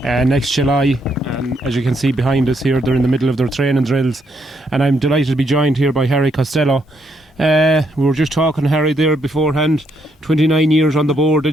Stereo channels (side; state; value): both; normal; correlation 0.75